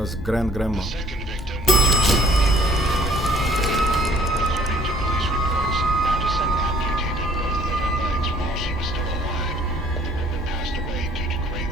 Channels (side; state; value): both; normal; correlation 0.57